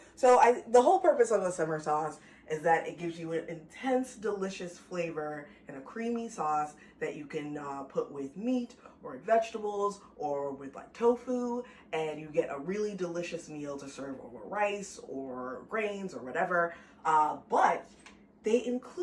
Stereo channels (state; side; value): identical; both; correlation 1.00